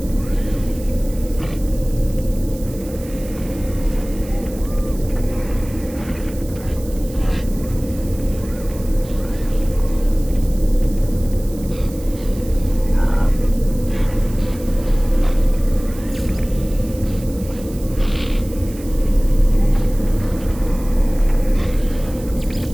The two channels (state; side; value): noise; right; hiss, 19 dB below the sound